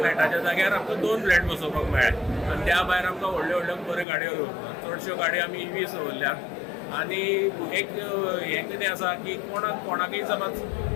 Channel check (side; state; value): right; drops out; at 4.0 s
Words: जाग्यार आमकां 2 फ्लॅट बसोवपाक मेळ्ळे आनी त्या भायर आमकां व्हडल्यो व्हडल्यो बऱ्यो गाडयो चडश्यो गाडयो आमी EVs दवरल्यात आनी एक हें कितें आसा की कोणाकय